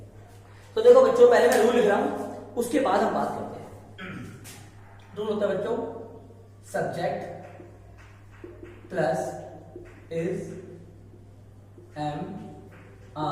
तो देखो बच्चों, पहले मैं रूल लिख रहा हूं, उसके बाद हम बात करते हैं। रूल होता है बच्चों, subject plus is am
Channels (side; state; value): both; identical; correlation 1.00